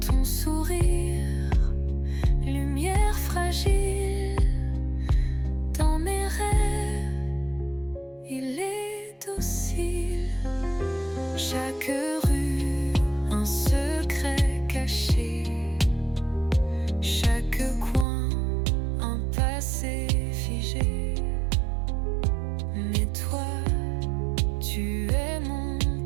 Ton sourire, lumière fragile. Dans mes rêves, il est docile. Chaque rue, un secret caché. Chaque coin, un passé figé. Mais toi, tu es mon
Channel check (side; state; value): left; drops out; at 18.1 s